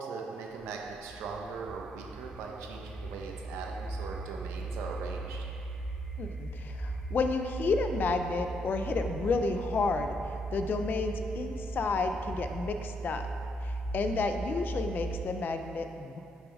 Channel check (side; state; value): both; normal; correlation 0.75